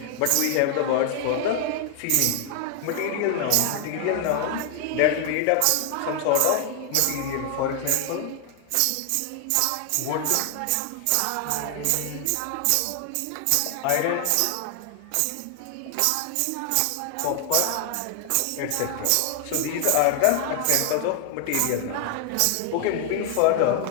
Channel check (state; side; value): different; both; correlation 0.00